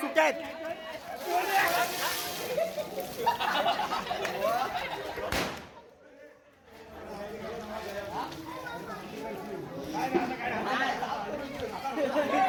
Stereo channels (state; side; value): identical; both; correlation 1.00